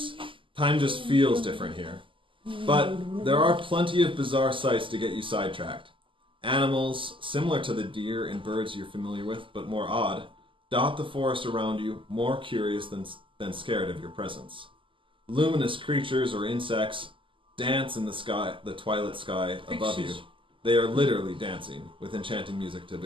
Time just feels different here. But there are plenty of bizarre sights to get you sidetracked. Animals, similar to the deer and birds you're familiar with, but more odd, dot the forest around you, more curious than scared of your presence. Luminous creatures or insects dance in the sky, the twilight sky above you. They are literally dancing, with enchanting music to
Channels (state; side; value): late; left; 0.25 ms